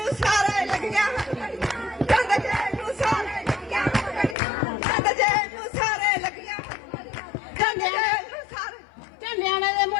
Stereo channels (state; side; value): drops out; right; at 4.4 s